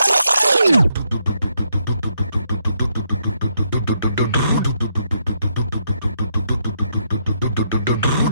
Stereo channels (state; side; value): inverted; both; correlation -0.77